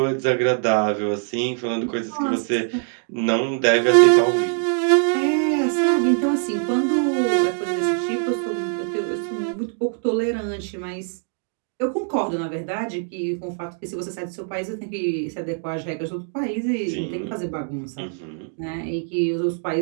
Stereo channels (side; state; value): left; silent; 63 dB below the other